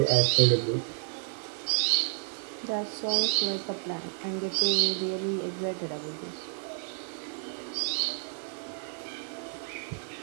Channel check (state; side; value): silent; left; 58 dB below the other